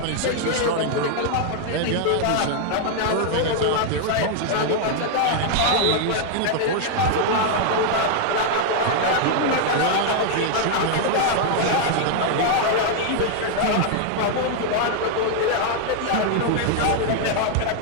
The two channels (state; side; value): different; both; correlation 0.00